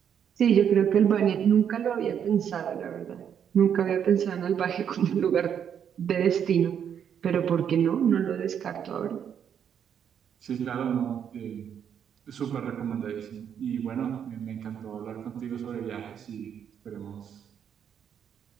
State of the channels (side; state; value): left; quieter; 8.4 dB